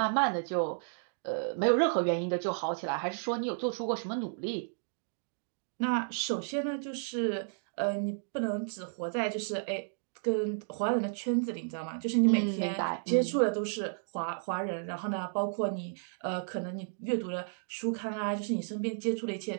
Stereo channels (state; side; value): silent; left; digital silence